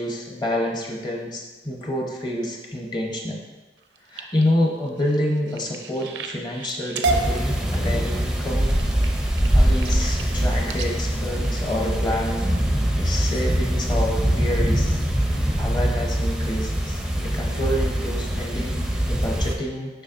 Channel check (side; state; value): both; normal; correlation 0.84